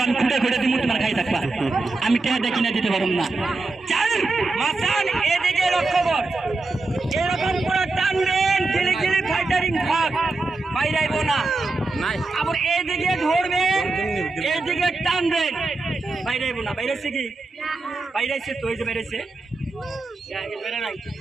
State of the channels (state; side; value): quieter; left; 3.4 dB